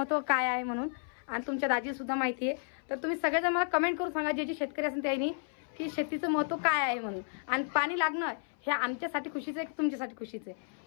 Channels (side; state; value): right; silent; 56 dB below the other